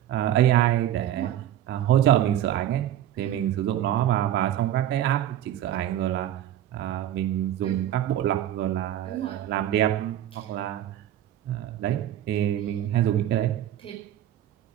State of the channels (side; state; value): left; quieter; 11.9 dB